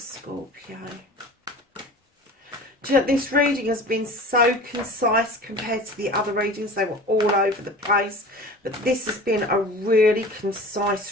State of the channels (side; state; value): both; normal; correlation 0.39